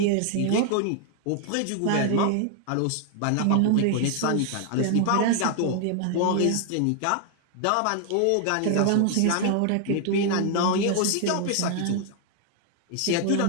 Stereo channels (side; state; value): both; different; correlation 0.00